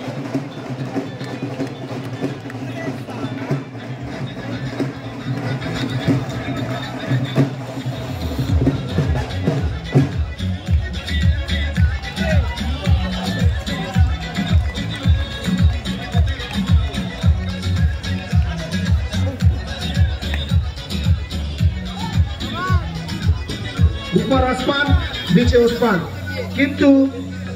উপর আসমান, নিচে ওসমান, কিন্তু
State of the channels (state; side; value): identical; both; correlation 1.00